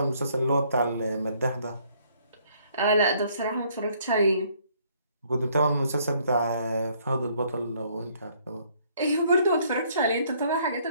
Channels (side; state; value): both; inverted; correlation -0.65